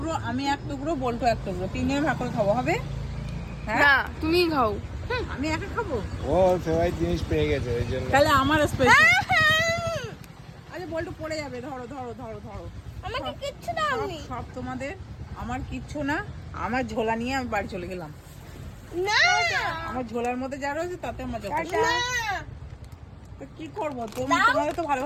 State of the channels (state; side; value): identical; both; correlation 1.00